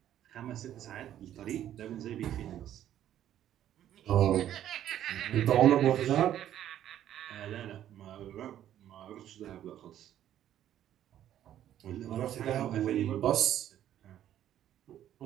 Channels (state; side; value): quieter; left; 11.4 dB